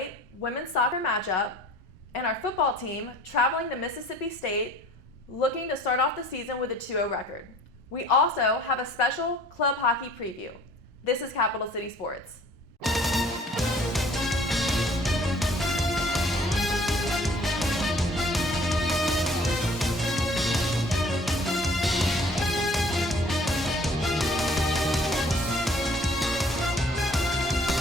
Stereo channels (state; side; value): normal; both; correlation 0.53